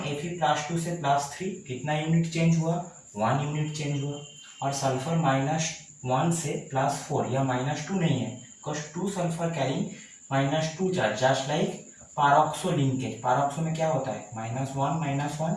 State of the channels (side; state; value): both; identical; correlation 1.00